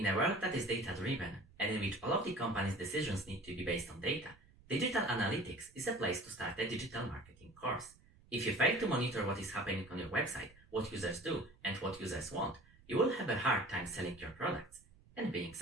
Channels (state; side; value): noise; right; rumble, 26 dB below the sound